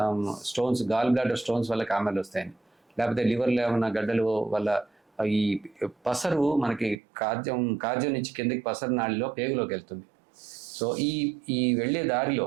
స్టోన్స్, గాల్ బ్లాడర్ స్టోన్స్ వల్ల కామాలు వస్తాయని, లేకపోతే లివర్లో ఏమన్నా గడ్డలు వల్ల ఈ పసరు మనకి కాజ్యం నుంచి కిందకి పసరు నాళిలో పేగులోకి వెళ్తుంది. సో ఈ వెళ్ళే దారిలో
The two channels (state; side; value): drops out; left; at 7.0 s